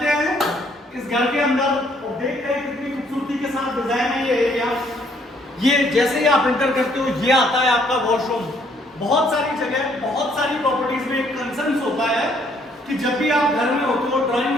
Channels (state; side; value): normal; both; correlation 0.66